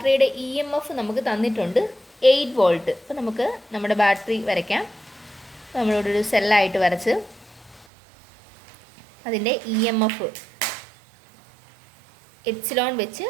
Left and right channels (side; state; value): left; drops out; at 7.9 s